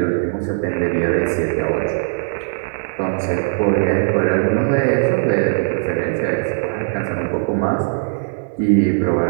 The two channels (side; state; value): left; silent; digital silence